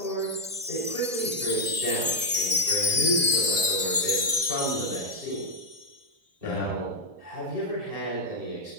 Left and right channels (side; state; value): left; late; 2.6 ms